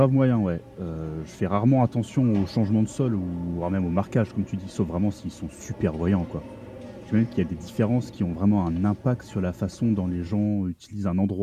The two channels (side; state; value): both; identical; correlation 1.00